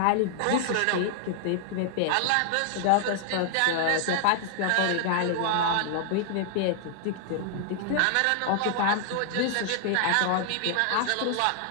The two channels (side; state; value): both; different; correlation -0.01